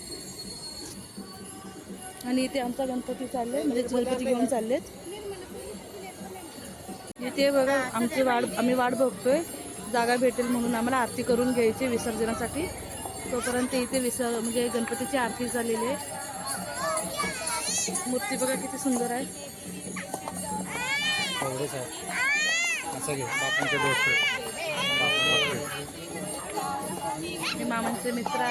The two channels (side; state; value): both; identical; correlation 1.00